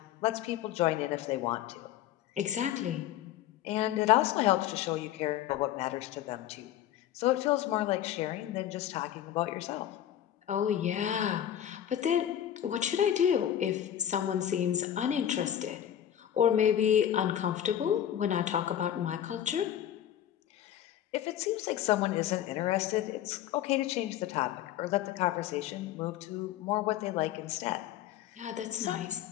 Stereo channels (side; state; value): right; quieter; 11.2 dB